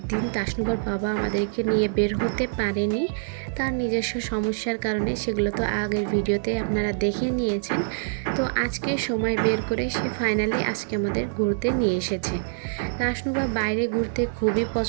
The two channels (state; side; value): silent; left; digital silence